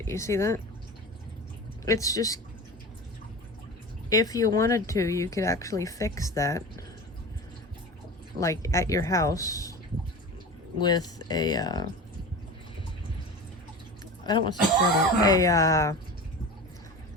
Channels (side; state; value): both; normal; correlation 0.32